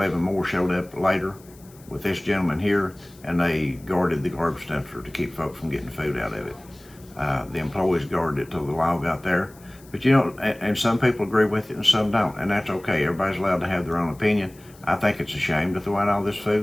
more showed up later with this gentleman here, and they guarded the garbage dumpster to keep folks from getting food out of it. The employees guarded it till the law got there. But you know, and some people agree with it and some don't, and that's okay. Everybody's allowed to have their own opinion. I think it's a shame to throw out all this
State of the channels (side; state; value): left; noise; hiss, 25 dB below the sound